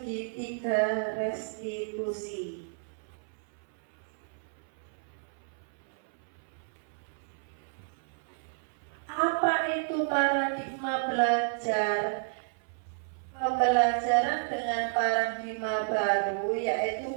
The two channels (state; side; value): silent; left; 57 dB below the other